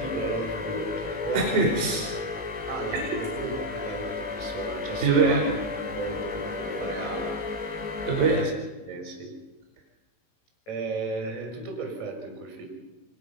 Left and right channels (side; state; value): right; late; 19 ms